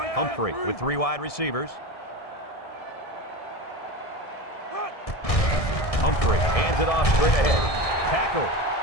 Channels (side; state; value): right; late; 1.7 ms